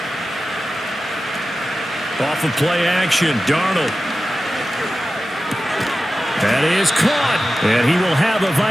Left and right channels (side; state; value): both; normal; correlation 0.94